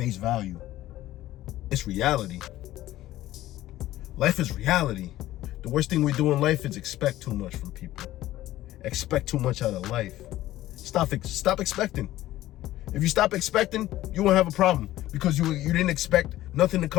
value. It's reality. Life is reality. The worst thing we do in life is expect too much from people. Expect too much out of life. Stop expecting. If you stop expecting, you won't have a problem because you didn't expect nothing to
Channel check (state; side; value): quieter; right; 15.1 dB